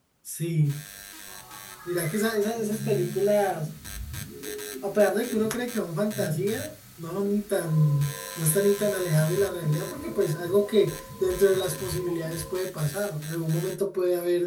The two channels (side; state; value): both; identical; correlation 1.00